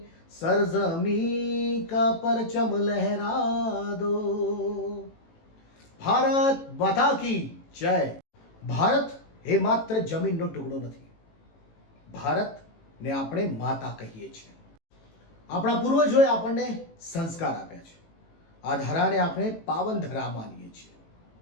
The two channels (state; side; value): late; right; 18 ms